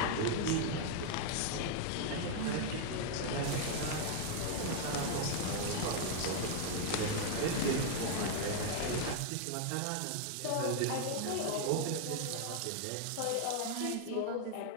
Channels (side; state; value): both; different; correlation 0.00